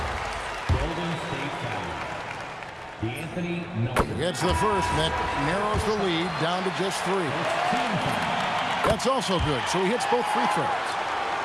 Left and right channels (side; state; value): both; identical; correlation 1.00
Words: Golden State foul. D'Anthony Melton. Gets the first, and that narrows the lead down to just 3. That's also good, so he hits both free throws.